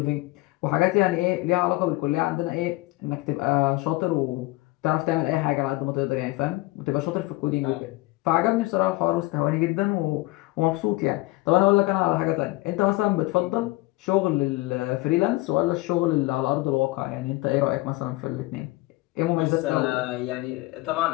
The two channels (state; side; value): quieter; right; 20.4 dB